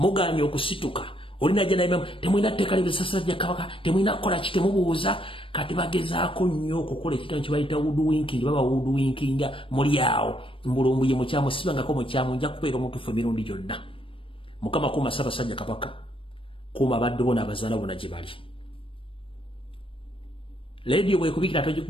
okusituka. Olina jana imamu, temwina tteeka libisasajja Kabaka, temwina kukola ki, temubuuza, kati bagezaako nnyo okukola ekitango kye bayita woodwinking, baba woodwinkinga muli awo. Mbulumbuye mukyamu sibangako mukyamu nja kubeera omutuufu emirundi gyonna. Mukama kuuma Ssaabasajja Kabaka, kuuma abaddu bo n'abazaala bonna gye bali. Leediyo bw'ekubikira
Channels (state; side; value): late; right; 0.25 ms